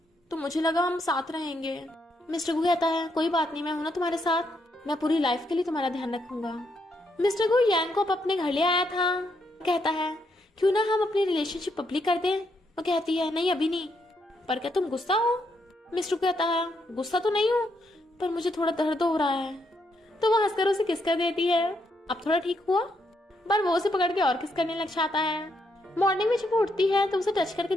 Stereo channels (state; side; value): normal; both; correlation 0.77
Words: तो मुझे लगा हम साथ रहेंगे। मिस्टर गू कहता है कोई बात नहीं, मैं हूं ना तुम्हारे साथ, मैं पूरी लाइफ के लिए तुम्हारा ध्यान रखूंगा। मिस्टर गू यांग को अपने घर ले आया था। कहता है क्यों ना हम अपनी रिलेशनशिप पब्लिक कर दें। वो कहती है नहीं अभी नहीं, पर क्या तुम गुस्सा हो? मिस्टर कहता है गुस्सा तो नहीं हूँ, पर मुझे थोड़ा दर्द हो रहा है। तो वो हंसकर उसे किस कर देती है। अब थोड़ा ठीक हुआ? पर वो उसे पकड़ के और किस करने लग जाता है। मॉर्निंग में जब वो उठती है तो उसे टच करके